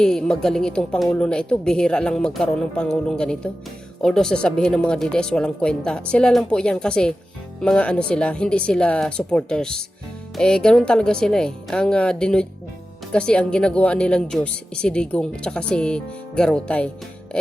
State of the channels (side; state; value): both; normal; correlation 0.93